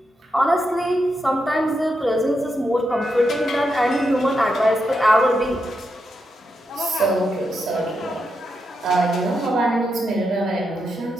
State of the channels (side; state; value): both; normal; correlation 0.84